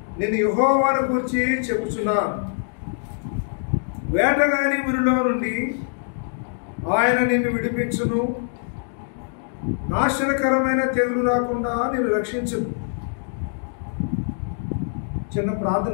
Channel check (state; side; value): silent; right; digital silence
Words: నేను యెహోవాను గురించి చెప్పుచున్నాను. వేటగాని ఊరిలో నుండి ఆయన నిన్ను విడిపించును, నాశనకరమైన తెగులు రాకుండా నిన్ను రక్షించును. చిన్న